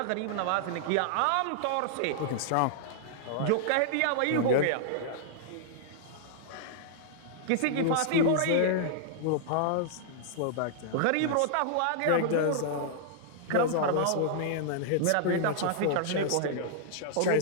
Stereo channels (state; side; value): different; both; correlation -0.01